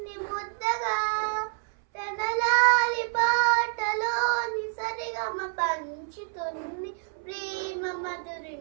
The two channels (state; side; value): silent; left; 59 dB below the other